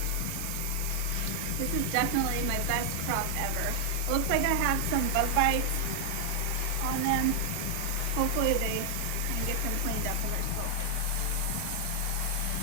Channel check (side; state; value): both; different; correlation 0.00